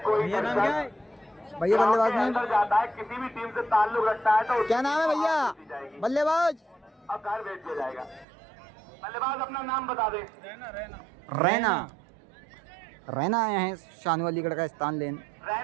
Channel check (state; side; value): drops out; left; at 8.2 s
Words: कोई भैया नाम क्या है? भैया बल्लेबाज में अंदर जाता है, किसी भी टीम से ताल्लुक रखता है तो क्या नाम है भैया बल्लेबाज? अब घर भेज दिया जाएगा। बल्लेबाज अपना नाम बता दे। रैना। रैना आए हैं शानू अलीगढ़ का स्थान लेन।